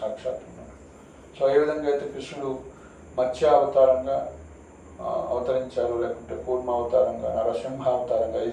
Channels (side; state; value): both; identical; correlation 1.00